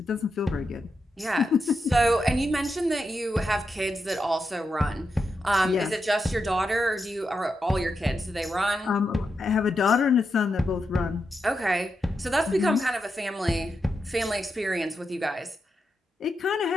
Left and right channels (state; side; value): normal; both; correlation 0.86